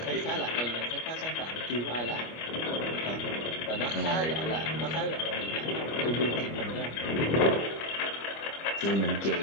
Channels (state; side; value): late; right; 25 ms